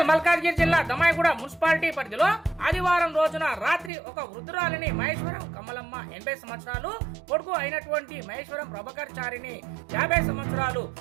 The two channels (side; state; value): left; drops out; at 3.9 s